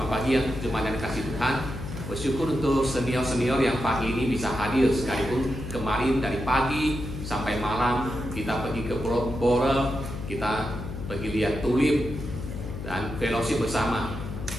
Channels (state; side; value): noise; left; hum, 8 dB below the sound